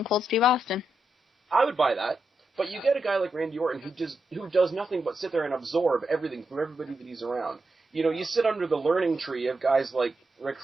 Cold Steve Austin. I would buy that. But you get a guy like Randy Orton who does nothing but sit there and absorb everything from everybody that he's around. You sit under the learning tree of guys like Ric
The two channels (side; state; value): both; normal; correlation 0.85